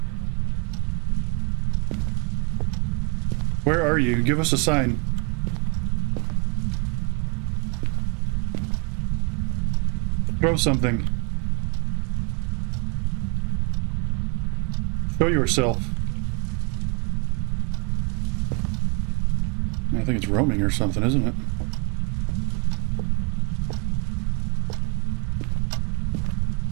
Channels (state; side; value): quieter; left; 33.7 dB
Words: Where are you? Give us a sign. Throw something. Show yourself. I think it's roaming or something, isn't it?